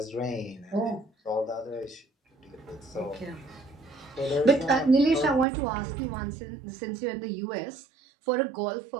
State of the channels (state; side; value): drops out; left; at 5.5 s